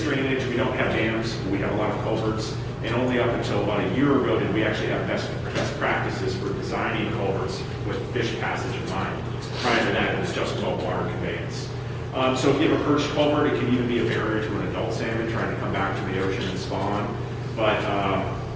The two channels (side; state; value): both; identical; correlation 1.00